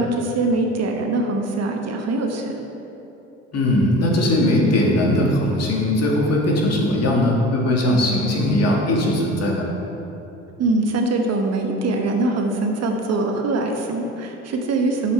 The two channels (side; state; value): both; normal; correlation 0.37